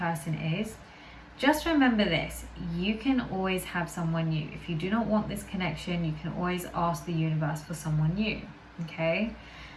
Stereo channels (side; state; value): both; identical; correlation 1.00